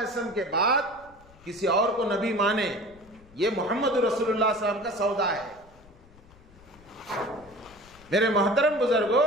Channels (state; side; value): noise; left; rumble, 25 dB below the sound